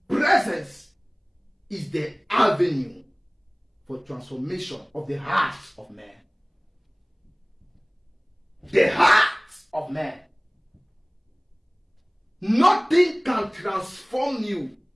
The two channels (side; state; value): both; identical; correlation 1.00